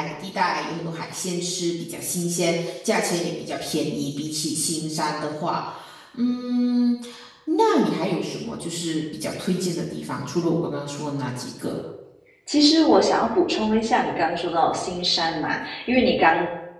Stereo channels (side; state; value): both; identical; correlation 1.00